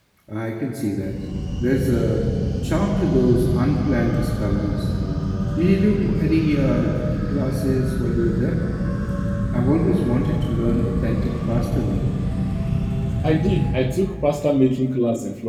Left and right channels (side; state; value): both; identical; correlation 1.00